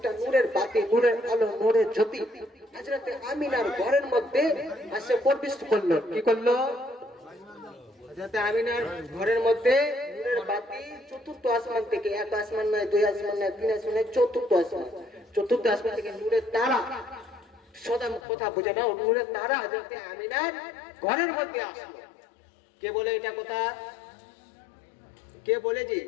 নূরের বাতি, নূরের আলো, নূরের জ্যোতি হযরতে আমিনার ঘরের মধ্যে এসে প্রবেশ করলো। কি করলো? হযরতে আমিনার ঘরের মধ্যে নূরের বাতি চতুর্থ আসমান থেকে, 1 আসমান নয়, 2 আসমান নয়, 3 আসমান নয়, চতুর্থ আসমান, চতুর্থ আসমান থেকে নূরের তারা, সদা কথা বুঝে না, নূরের তারা হযরতে আমিনার ঘরের মধ্যে আসলো। কে বলে এটা কথা? কে বলেছে?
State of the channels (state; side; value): drops out; right; at 18.2 s